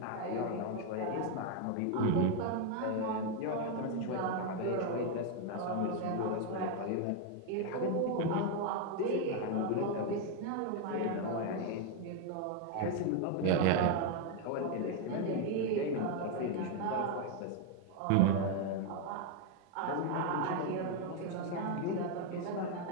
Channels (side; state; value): both; different; correlation 0.01